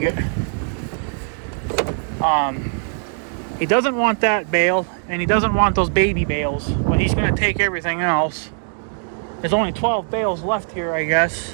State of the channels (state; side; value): silent; left; 58 dB below the other